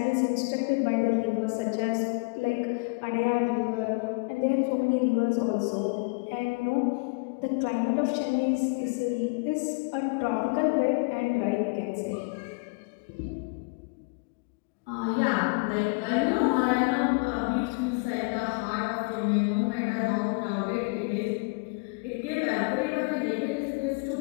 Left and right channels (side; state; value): right; quieter; 30.9 dB